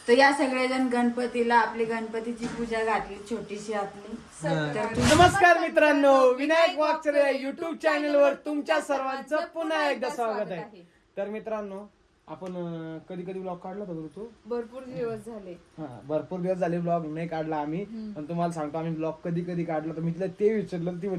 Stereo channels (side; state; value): both; identical; correlation 1.00